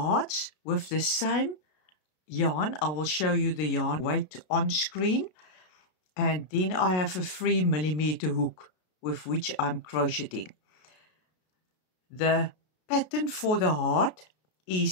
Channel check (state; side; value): late; right; 33 ms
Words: with the same yarn. I will show you the yarn weight on screen. And then I have a 3mm hook with which I'm crocheting. The pattern for the heart